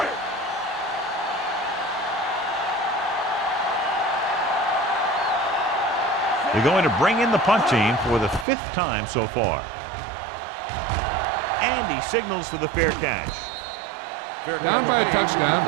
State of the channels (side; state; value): left; drops out; at 8.5 s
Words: They're going to bring in the punt team for the 5th time so far. And he signals for the fair catch. Down by a touchdown,